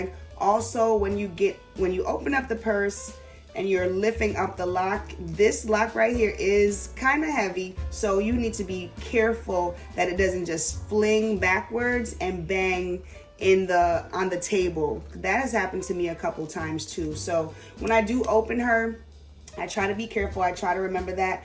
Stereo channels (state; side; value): identical; both; correlation 1.00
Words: Also, when you open up the purse and you're lifting up the lock, this lock right here is kind of heavy, so you need to be careful that it doesn't just fling backwards and bang on the table. That has happened to me a couple times too. So when I do open her, I try to be careful. I try to remember that,